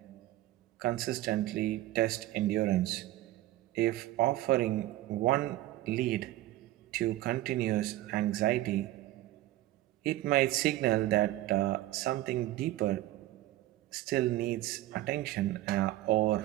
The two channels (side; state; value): left; quieter; 15.9 dB